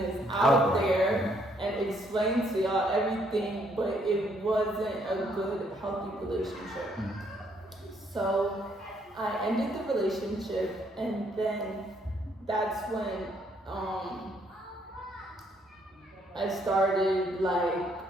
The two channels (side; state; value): both; normal; correlation 0.69